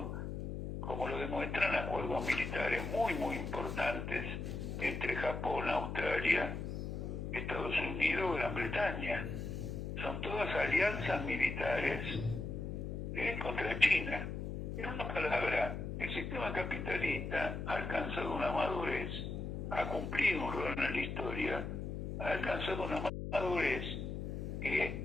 como lo demuestran acuerdos militares muy, muy importantes entre Japón, Australia, Estados Unidos, Gran Bretaña. Son todas alianzas militares contra China. En una palabra, el sistema capitalista ha alcanzado una madurez, ha cumplido un rol en la historia, ha alcanzado una madurez que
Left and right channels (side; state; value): left; noise; hum, 4 dB below the sound